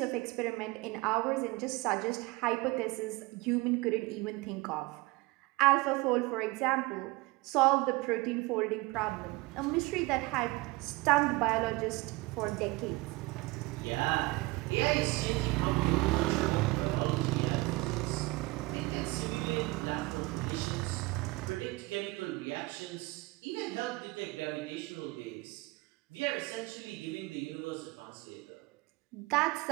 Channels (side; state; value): left; quieter; 23.0 dB